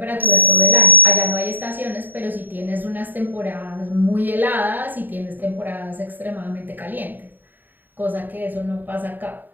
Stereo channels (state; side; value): late; left; 0.090 ms